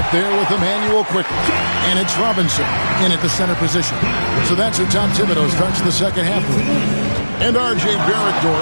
there with Emmanuel Quickly. And it's Robinson in at the center position. So that's how Tom Thibodeau starts the second half. And R.J. Barrett,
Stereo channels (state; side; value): inverted; both; correlation -1.00